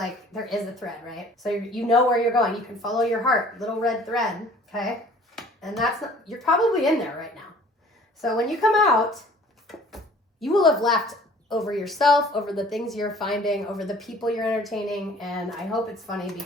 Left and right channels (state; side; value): normal; both; correlation 0.51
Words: there is a thread, right? So you know where you're going. You can follow your heart, little red thread, okay? And you're probably in there right now. So when you come out, you will have laughed over yourself, over the things you're finding, over the people you're entertaining, and I hope it's funny